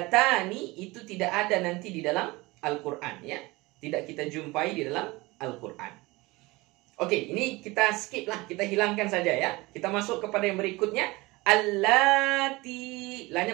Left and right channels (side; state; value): left; quieter; 22.3 dB